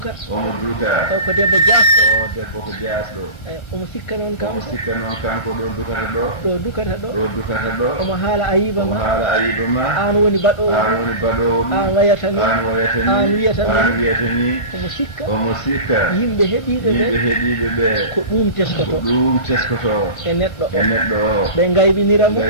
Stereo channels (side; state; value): right; late; 1.3 ms